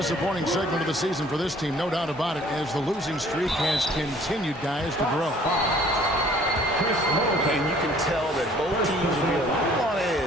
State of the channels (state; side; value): normal; both; correlation 0.56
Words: segment of the season for this team, no doubt about it, as the losing streak has continued, guys, to grow. And you can tell that both teams will be a little on